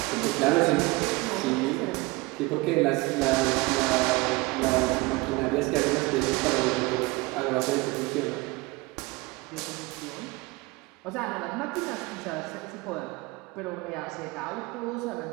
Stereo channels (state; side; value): quieter; left; 23.7 dB